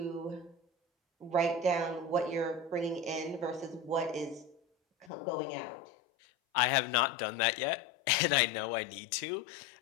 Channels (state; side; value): drops out; right; at 5.1 s